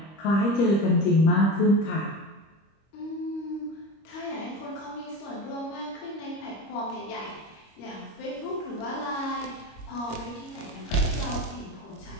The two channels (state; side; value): late; right; 25 ms